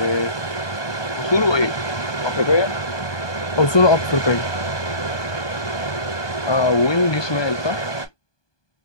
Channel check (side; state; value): right; late; 1.2 ms